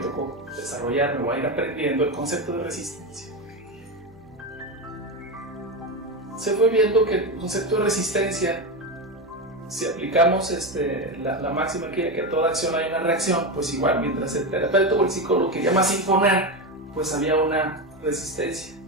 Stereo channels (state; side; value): noise; right; hum, 28 dB below the sound